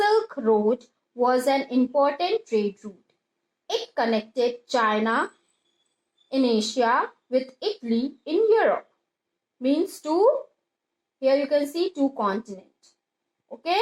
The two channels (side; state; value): both; identical; correlation 1.00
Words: Road was an important trade route. It connected China in Asia with Italy in Europe. Means here you can see two continents. Okay,